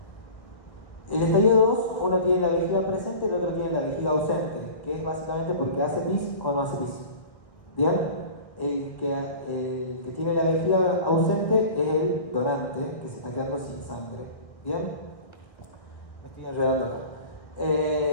El estadio 2, uno tiene la vejiga presente, el otro tiene la vejiga ausente, que es básicamente porque hace pis o no hace pis. ¿Bien? El que tiene la vejiga ausente es el donante, que se está quedando sin sangre. ¿Bien? Me estoy enredando.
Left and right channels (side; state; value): right; late; 1.5 ms